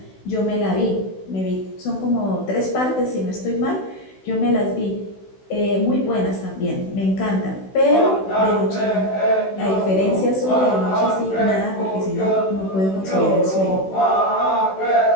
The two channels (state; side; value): late; right; 16 ms